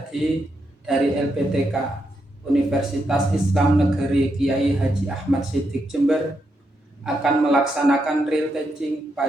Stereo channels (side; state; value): both; normal; correlation 0.82